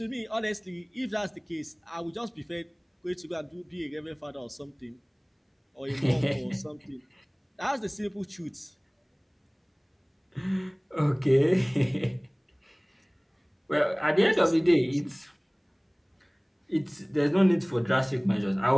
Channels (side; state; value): both; identical; correlation 1.00